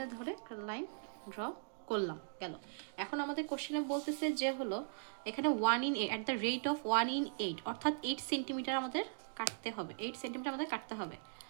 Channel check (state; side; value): silent; left; digital silence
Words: ধরে একটা লাইন ড্র করলাম, গেল। এখন আমাদের কোশ্চেনে বলতেছে যে হলো এখানে 1 in 8 at the rate of 1 in 8, অর্থাৎ 8 সেন্টিমিটার আমাদের কাটতে হবে, 8 সেন্টিমিটার আমাদের কাটতে হবে।